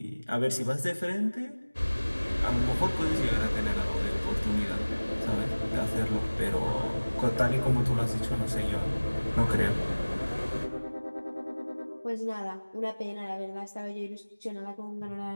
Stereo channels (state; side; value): inverted; both; correlation -1.00